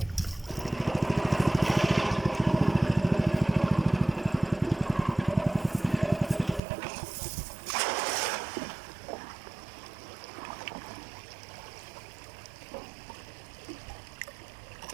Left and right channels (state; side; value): drops out; left; at 6.6 s